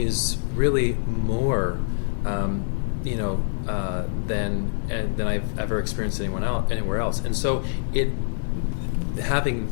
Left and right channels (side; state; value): right; silent; digital silence